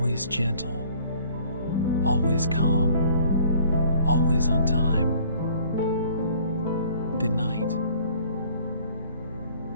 gentle, always calm, always on time. Good night.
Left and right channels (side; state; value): both; inverted; correlation -0.54